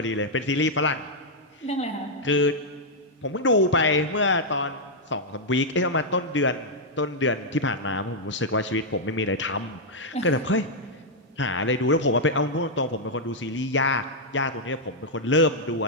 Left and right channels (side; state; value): both; normal; correlation -0.04